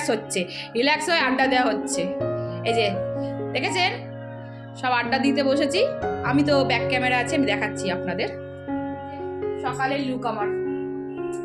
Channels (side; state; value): both; identical; correlation 1.00